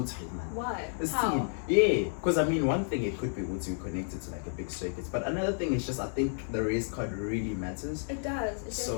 it, man. Why? How? Yeah. Because one thing it could be what's you connected to like a big circuit. But another thing is just I think the race card really matters. It does.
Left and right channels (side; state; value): right; silent; 57 dB below the other